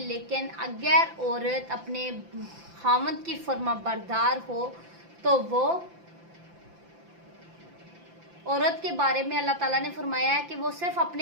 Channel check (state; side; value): late; left; 5.9 ms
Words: اگر عورت اپنے خاوند کی فرما بردار ہو تو وہ عورت کے بارے میں اللہ تعالیٰ نے فرمایا ہے کہ وہ صرف